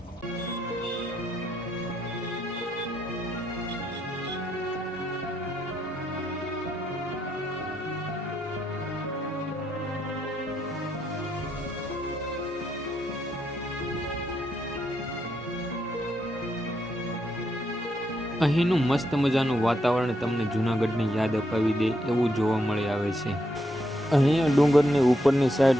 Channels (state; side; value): normal; both; correlation 0.78